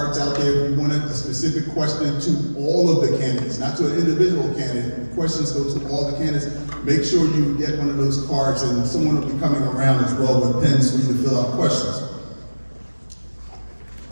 out there. If you wanted a specific question to all of the candidates, not to an individual candidate. Questions go to all the candidates. Make sure you get one of those cards, and someone will be coming around as well with pens for you to fill out questions.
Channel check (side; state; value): both; inverted; correlation -1.00